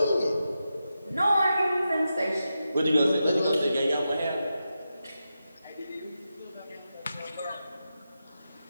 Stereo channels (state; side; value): inverted; both; correlation -0.89